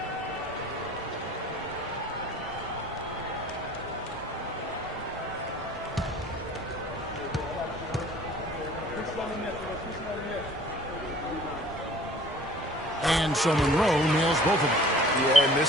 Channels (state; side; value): normal; both; correlation 0.50